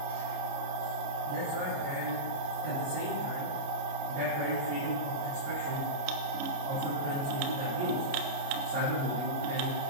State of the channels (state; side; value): late; left; 29 ms